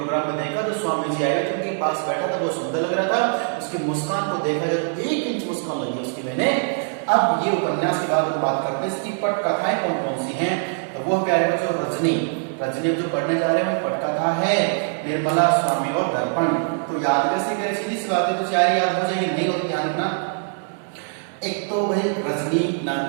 में देखा, जो स्वामी जी आए थे उनके पास बैठा था, बहुत सुंदर लग रहा था, उसकी मुस्कान को देखा जब 1 इंच मुस्कान लगी उसकी मैंने। अब ये उपन्यास के बाद हम बात करते हैं इसकी पटकथाएं कौन कौन सी हैं। तो वो प्यारे बच्चों, रजनी जो पढ़ने जा रहे हैं पटकथा है निर्मला, स्वामी और दर्पण। तो याद कैसे करें? सीधी सी बात है, तो 4 याद हो जाएगी, नहीं होती ध्यान रखना। एक तो भाई रजनी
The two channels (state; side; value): silent; left; 59 dB below the other